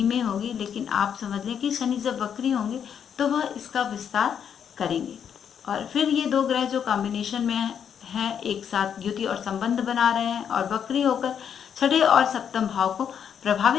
होगी, लेकिन आप समझ लें कि शनि जब वक्री होंगे तो वह इसका विस्तार करेंगे और फिर ये दो ग्रह जो कॉम्बिनेशन में हैं एक साथ युति और संबंध बना रहे हैं और वक्री होकर छठे और सप्तम भाव को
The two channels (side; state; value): right; quieter; 8.1 dB